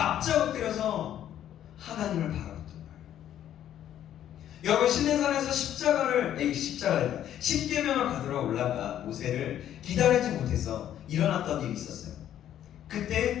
엎드려서 하나님을 바라봤던 거예요. 여러분, 시내산에서 십계명을 받으러 올라가 모세를 기다리지 못해서 일어났던 일이 있었어요.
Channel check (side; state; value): right; quieter; 11.0 dB